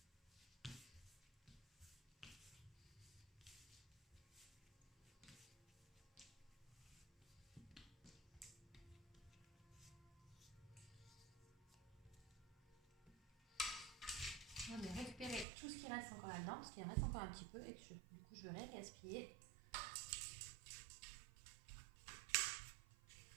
On va récupérer tout ce qui reste encore là-dedans, parce qu'il en reste encore un petit peu et que du coup je vais gaspiller.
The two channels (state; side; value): drops out; left; at 15.5 s